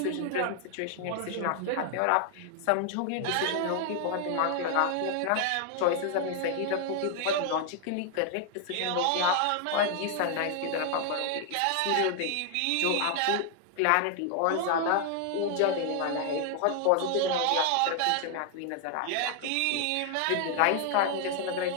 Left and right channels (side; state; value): both; different; correlation 0.00